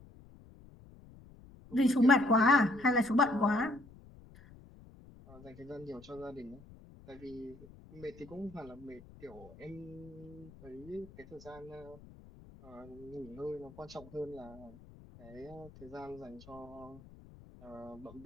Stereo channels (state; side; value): noise; left; rumble, 20 dB below the sound